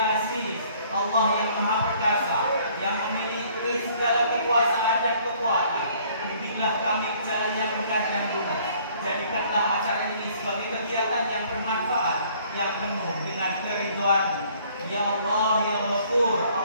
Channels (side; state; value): both; inverted; correlation -0.58